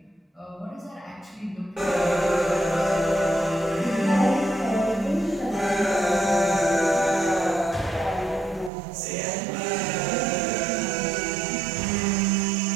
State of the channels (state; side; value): drops out; left; at 8.7 s